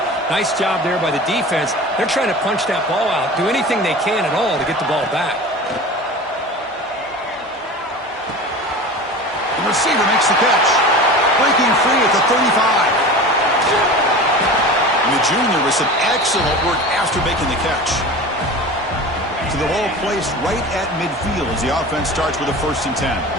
nice job there by the defense. They're trying to punch that ball out, do anything they can at all to get the ball back. The receiver makes the catch. Breaking free at the 35. And the junior with some excellent work after making the catch. To the ball placed right at midfield as the offense starts with a 1st and 10.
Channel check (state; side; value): normal; both; correlation 0.34